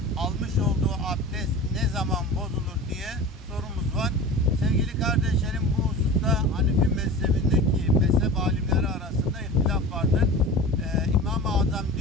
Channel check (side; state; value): both; normal; correlation 0.34